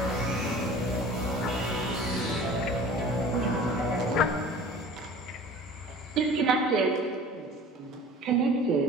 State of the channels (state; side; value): normal; both; correlation 0.43